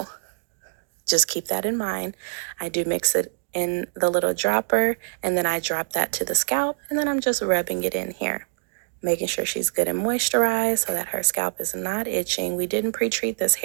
just keep that in mind. I do mix it in the little dropper, and then I drop that to the scalp, and then I'm just rubbing it in here, making sure she's good and moisturized so that her scalp is not itching. We didn't pre-treat this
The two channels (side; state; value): left; silent; digital silence